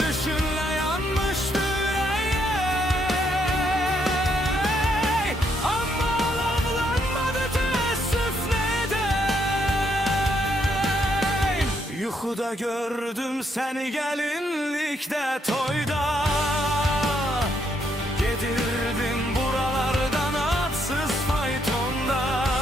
yanmıştı yüreğe, ama alavlanmadı teessüf ne edey. Yuxuda gördüm seni gelinlikte, toyda gedirdim buralardan atsız faytonda.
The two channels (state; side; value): normal; both; correlation 0.74